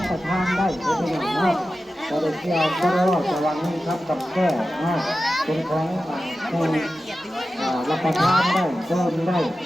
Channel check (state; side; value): normal; both; correlation 0.93